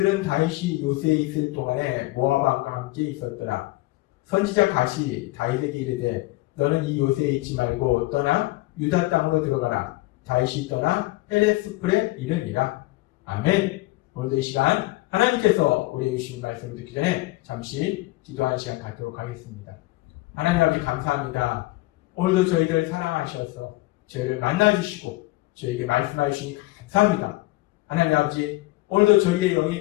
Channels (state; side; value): quieter; right; 20.3 dB